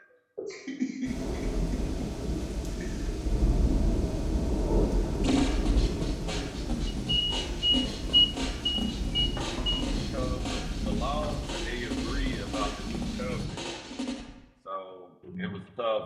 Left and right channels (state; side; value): identical; both; correlation 1.00